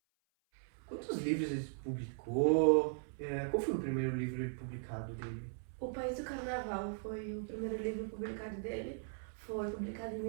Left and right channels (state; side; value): silent; left; 52 dB below the other